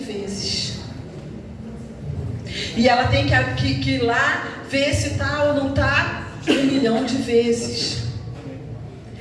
vezes. E ela tem que ir lá ver se está ou não está 1 milhão de vezes.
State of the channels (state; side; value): identical; both; correlation 1.00